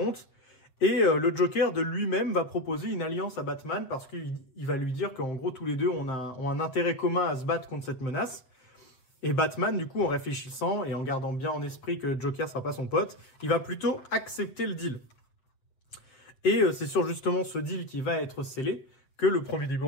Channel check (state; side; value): late; right; 7.5 ms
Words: et le Joker de lui-même va proposer une alliance à Batman parce qu'il va lui dire qu'en gros tous les deux ont un intérêt commun à se battre contre cette menace. Et Batman, du coup, en réfléchissant et en gardant bien en esprit que Joker sera pas son pote, il va plutôt accepter le deal. Et c'est sur justement ce deal qui va être scellé que le premier